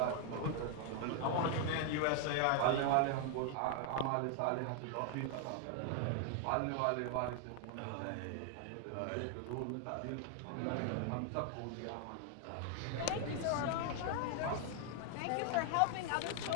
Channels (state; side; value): different; both; correlation 0.00